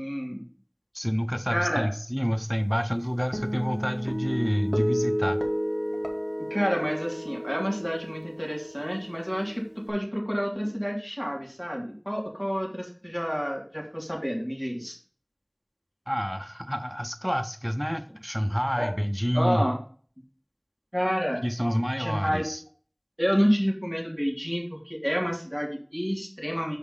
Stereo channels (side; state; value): both; identical; correlation 1.00